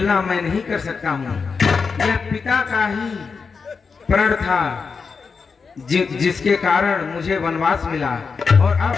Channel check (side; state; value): right; quieter; 5.2 dB